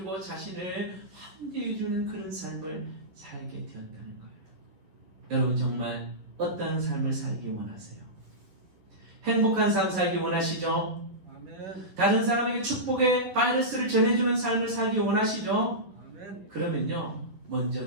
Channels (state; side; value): late; left; 11 ms